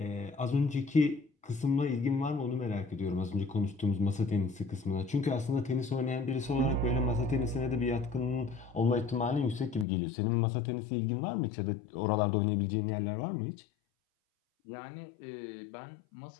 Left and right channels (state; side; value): drops out; right; at 9.9 s